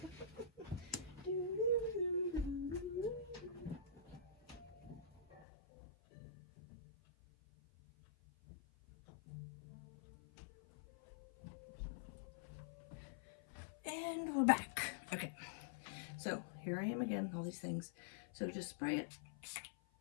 And we're back. Okay. So here I am again, all these things. So just spray it.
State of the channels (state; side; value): drops out; right; at 5.5 s